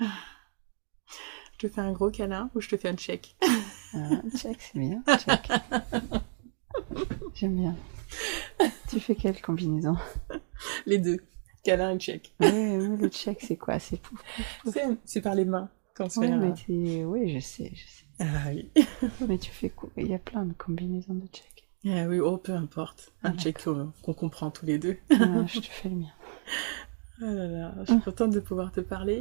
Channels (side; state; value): left; silent; 57 dB below the other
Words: te fais un gros câlin ou je te fais un check? Un check, c'est bien. Check. J'aime bien. Tu fais quelle combinaison? Les deux. Câlin et check. Oui, le check, c'est quoi? C'est pouf, pouf, pouf. C'est par les mains qu'on se Oui, fait. mais oui, je sais. Ah oui. Mais tu fais quoi? Il y a plein de combinaisons de check. Ah oui, oh, peu importe. Un check qu'on comprend tous les deux. Je te fais le mien. Ah là là, je suis contente de pouvoir te